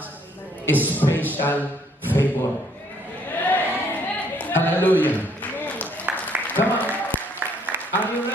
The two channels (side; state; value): both; normal; correlation 0.65